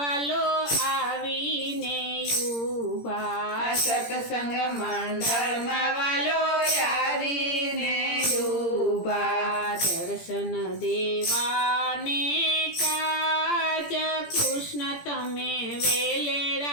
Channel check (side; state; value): right; late; 17 ms